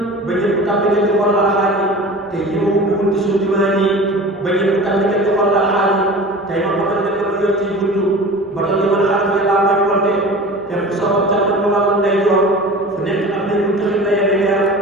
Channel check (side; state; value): both; normal; correlation 0.38